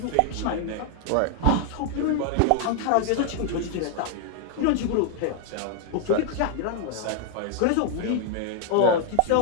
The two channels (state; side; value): different; both; correlation 0.00